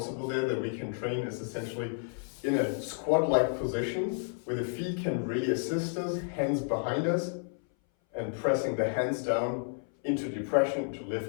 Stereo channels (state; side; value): silent; right; 57 dB below the other